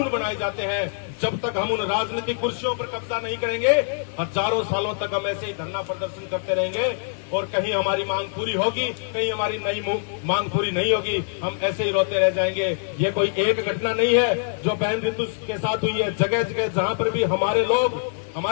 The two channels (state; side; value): silent; right; digital silence